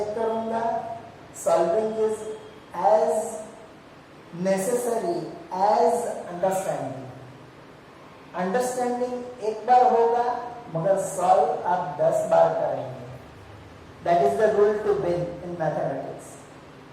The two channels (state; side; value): identical; both; correlation 1.00